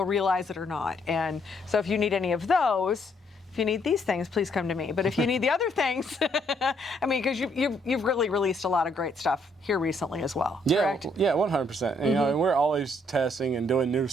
realize it or not. And so if you need any of those. If you need these things, please come to me. But if you need the other things, I mean, because you've really released a lot of great stuff here recently as well. Yeah, correct? Yeah, 100%. And we're always testing and doing new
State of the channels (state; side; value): normal; both; correlation 0.70